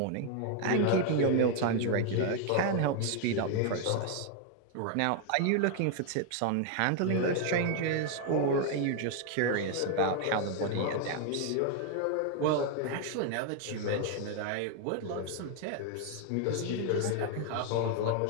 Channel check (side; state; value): both; different; correlation 0.00